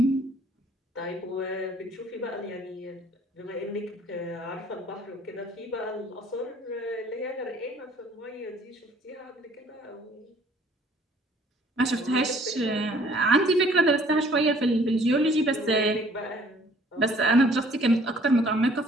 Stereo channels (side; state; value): both; normal; correlation 0.57